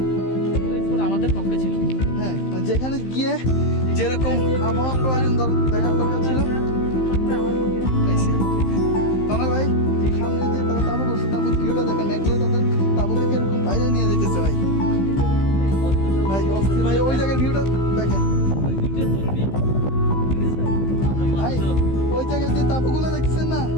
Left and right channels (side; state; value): right; late; 15 ms